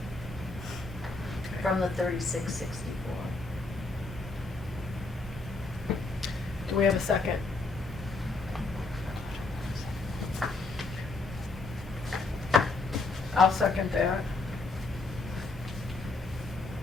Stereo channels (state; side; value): quieter; right; 3.4 dB